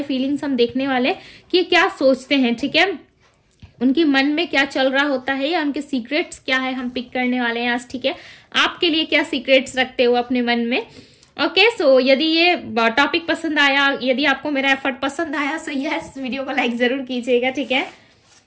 फीलिंग्स हम देखने वाले कि क्या सोचते हैं, ठीक है। उनके मन में क्या चल रहा होता है या उनके सीक्रेट्स क्या है, हम पिक करने वाले हैं आज, ठीक है। आपके लिए क्या सीक्रेट्स रखते हो अपने मन में। ओके, सो यदि ये टॉपिक पसंद आया, यदि आपको मेरा एफर्ट पसंद आया, सो यस, वीडियो को लाइक जरूर कीजिएगा, ठीक है।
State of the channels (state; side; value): identical; both; correlation 1.00